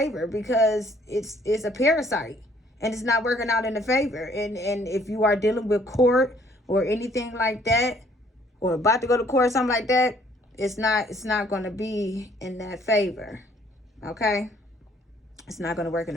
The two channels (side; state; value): both; normal; correlation 0.62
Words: because it's a parasite and it's not working out in the favor. And if you are dealing with court or anything like that, or about to go to court or something like that, it's not going to be in that favor. Okay? It's not going to work in